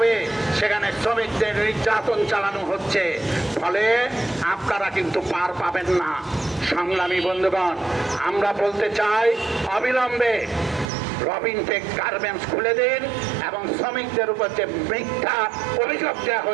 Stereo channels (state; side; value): drops out; left; at 10.9 s